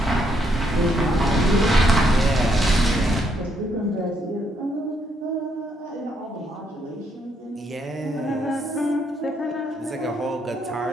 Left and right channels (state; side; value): normal; both; correlation 0.74